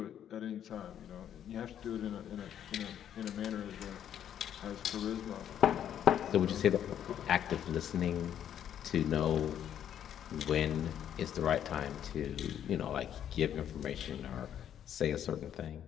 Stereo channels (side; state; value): right; quieter; 9.9 dB